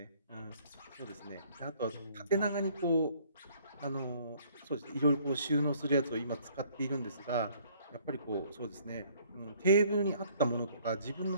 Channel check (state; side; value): inverted; both; correlation -0.60